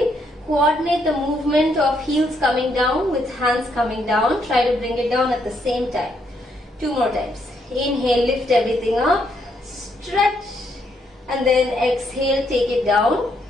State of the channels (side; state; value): both; normal; correlation 0.74